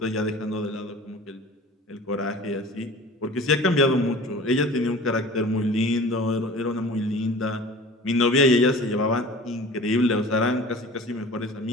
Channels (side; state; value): both; normal; correlation 0.41